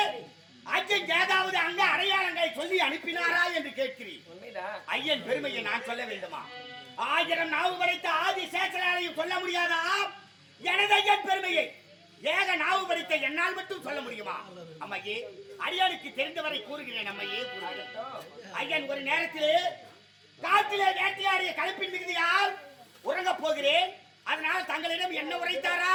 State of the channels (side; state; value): both; identical; correlation 1.00